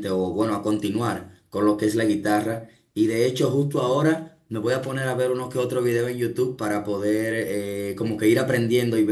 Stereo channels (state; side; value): identical; both; correlation 1.00